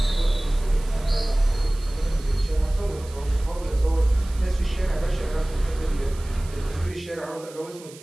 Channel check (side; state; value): right; noise; hiss, 20 dB below the sound